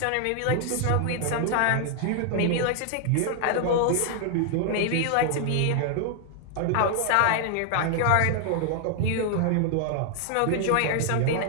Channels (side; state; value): both; different; correlation 0.00